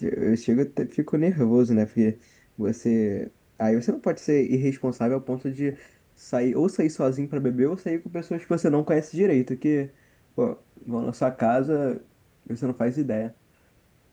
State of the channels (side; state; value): both; identical; correlation 1.00